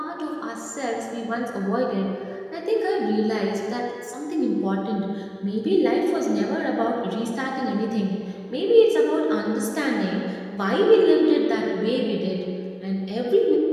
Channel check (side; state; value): both; identical; correlation 1.00